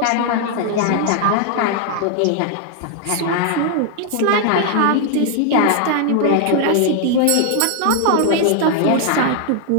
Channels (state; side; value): different; both; correlation 0.00